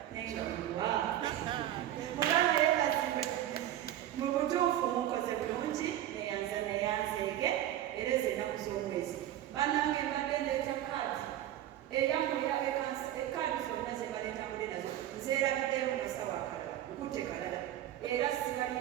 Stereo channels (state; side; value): quieter; left; 12.6 dB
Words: nenga mulwa mugamba yeebazibwe mu butuufu mukoze bulungi neyanzeege era ezo ennaku z'omwezi bannange mbadde ndeeta kaadi eyamulya ekaadi zonna ze baleetambule nazo nzeerabiddeemu masawo akalala nkutte kalala era sibali